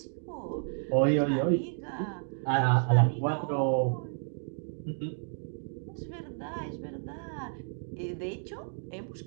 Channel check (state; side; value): silent; left; 57 dB below the other